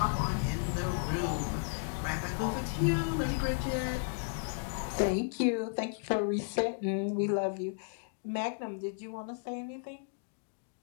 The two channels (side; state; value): right; silent; digital silence